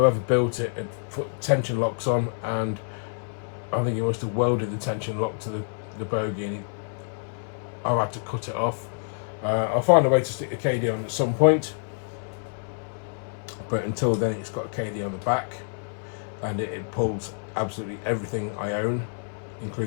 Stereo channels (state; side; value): silent; right; 60 dB below the other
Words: built it had put tension locks on, and I think he must have welded the tension lock to the bogie, and I've had to cut it off. I'll find a way to stick the KD on at some point, but until then it's got a KD on the back, and it pulls absolutely everything I own,